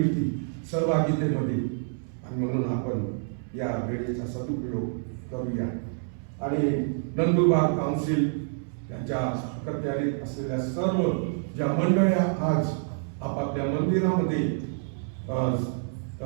सहभागितेमध्ये, आणि म्हणून आपण या वेळेचा सदुपयोग करूया. आणि नंदुरबार काउन्सिल यांच्या अखत्यारीत असलेल्या सर्व ज्या मंडळ्या आज आपापल्या मंदिरामध्ये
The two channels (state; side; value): silent; left; 60 dB below the other